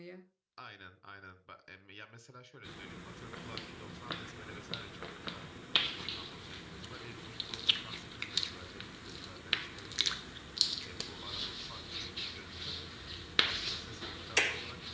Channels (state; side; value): identical; both; correlation 1.00